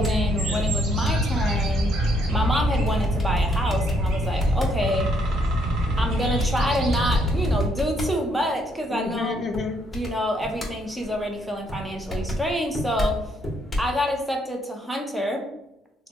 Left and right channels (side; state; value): both; normal; correlation 0.71